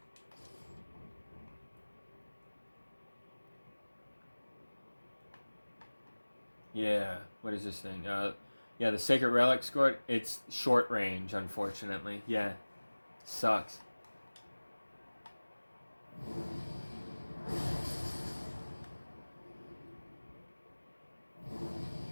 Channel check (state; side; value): inverted; both; correlation -1.00